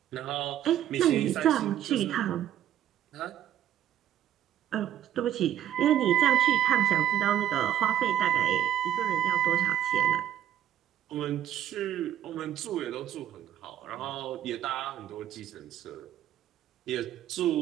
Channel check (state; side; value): quieter; left; 11.3 dB